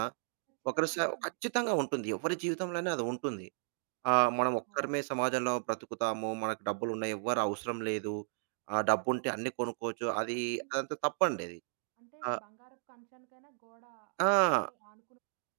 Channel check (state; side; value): silent; left; digital silence